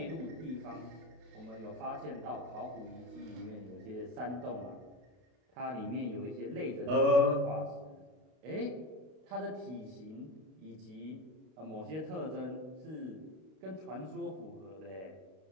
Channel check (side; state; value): left; late; 32 ms